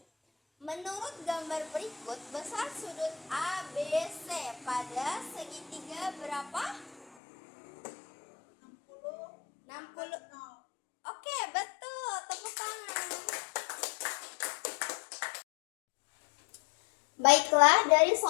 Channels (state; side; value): drops out; right; at 7.1 s